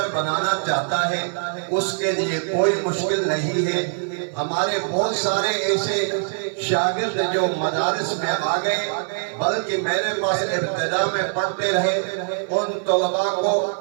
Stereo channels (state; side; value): silent; left; 56 dB below the other